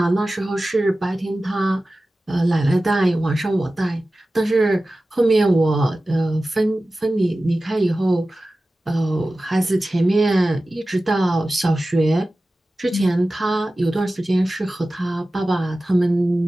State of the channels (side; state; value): both; normal; correlation 0.95